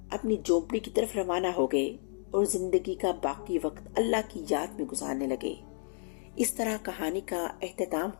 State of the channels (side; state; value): right; silent; digital silence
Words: اپنی جھونپڑی کی طرف روانہ ہو گئے اور زندگی کا باقی وقت اللہ کی یاد میں گزارنے لگے۔ اس طرح کہانی کا اختتام